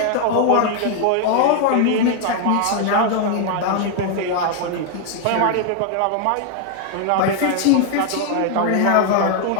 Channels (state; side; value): different; both; correlation 0.00